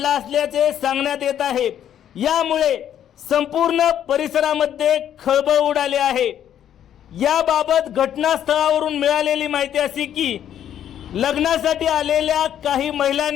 असल्याचे सांगण्यात येत आहे। यामुळे संपूर्ण परिसरामध्ये खळबळ उडाली आहे। याबाबत घटनास्थळावरून मिळालेली माहिती अशी की लग्नासाठी आलेल्या काही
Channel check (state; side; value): quieter; right; 10.2 dB